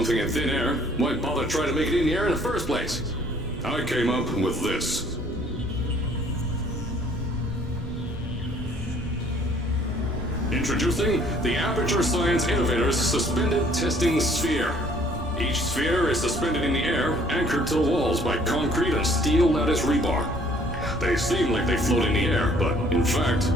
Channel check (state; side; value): normal; both; correlation 0.59